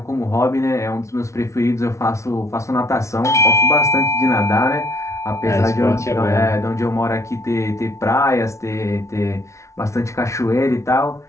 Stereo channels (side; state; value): right; late; 0.14 ms